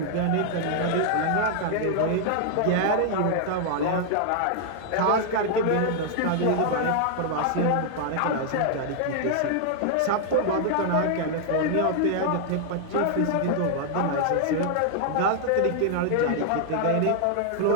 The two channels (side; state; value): both; different; correlation -0.01